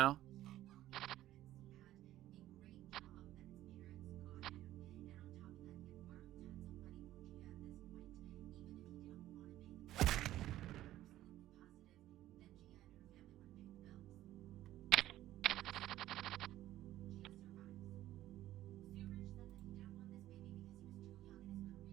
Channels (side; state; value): left; quieter; 14.1 dB